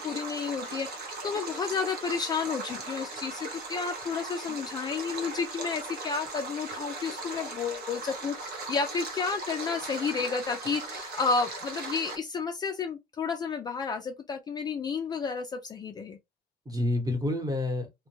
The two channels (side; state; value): right; quieter; 3.4 dB